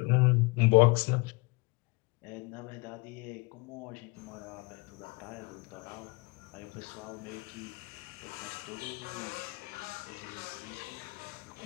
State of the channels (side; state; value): right; quieter; 27.0 dB